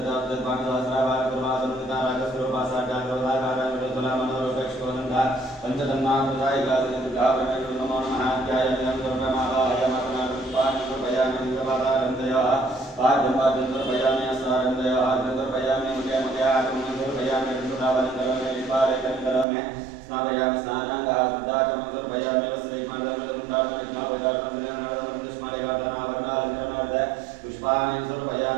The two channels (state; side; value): drops out; left; at 19.5 s